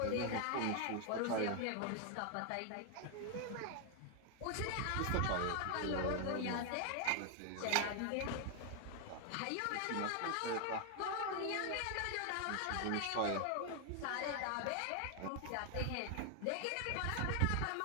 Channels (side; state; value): both; different; correlation 0.00